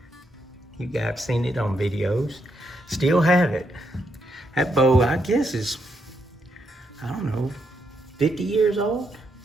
You guys have seen it on videos. Still have it. That bow, I guess, is, I don't know, 50 years old?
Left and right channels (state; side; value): normal; both; correlation 0.79